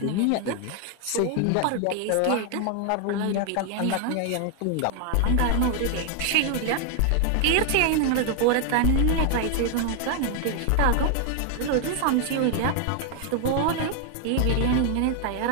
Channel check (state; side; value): different; both; correlation 0.00